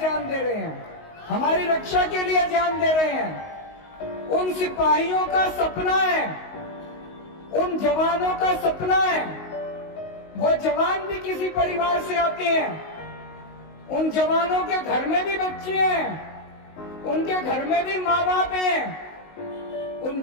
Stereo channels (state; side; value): late; right; 19 ms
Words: दे रहे हैं, हमारी रक्षा के लिए जान दे रहे हैं। उन सिपाहियों का सपना है, उन जवानों का सपना है। वो जवान भी किसी परिवार से आते हैं। उन जवानों के घर में भी बच्चे हैं, उनके घर में भी माँ बाप हैं। उन